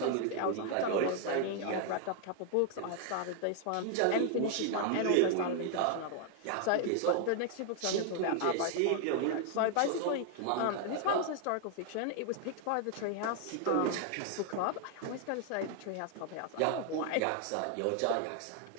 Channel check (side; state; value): both; different; correlation 0.00